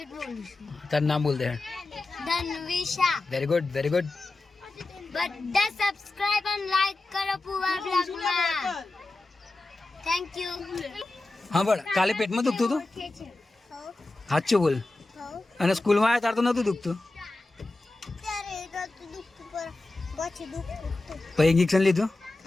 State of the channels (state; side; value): quieter; right; 3.0 dB